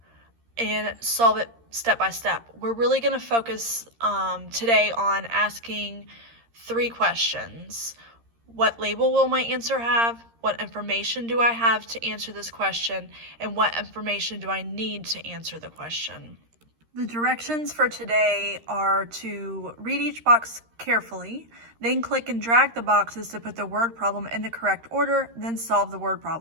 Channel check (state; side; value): late; left; 13 ms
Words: and solve it step by step. We're really going to focus today on asking 3 questions. What label will my answer have? What information do I have to answer this question? And what information do I need to answer the question? The directions for today are to read each box carefully, then click and drag the boxes to put the word problem in the correct order, then solve the word